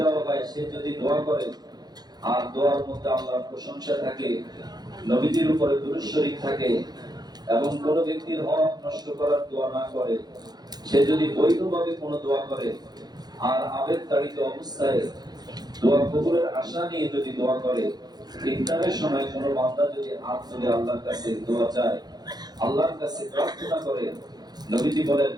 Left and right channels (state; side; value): late; left; 0.19 ms